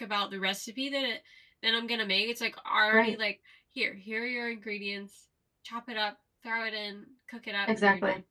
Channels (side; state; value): both; identical; correlation 1.00